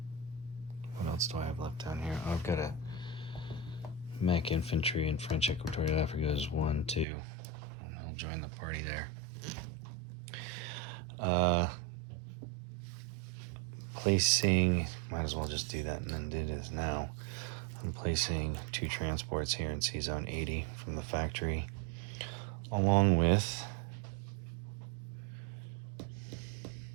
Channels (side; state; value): left; drops out; at 7.1 s